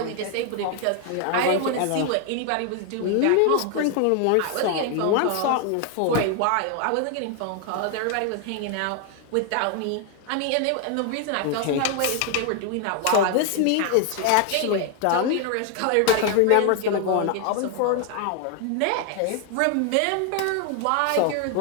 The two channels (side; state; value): both; different; correlation 0.00